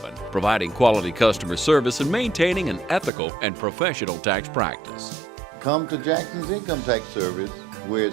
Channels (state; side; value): drops out; left; at 3.1 s